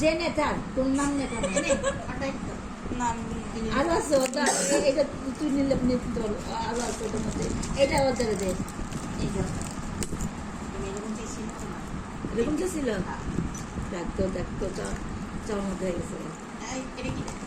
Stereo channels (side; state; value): both; identical; correlation 1.00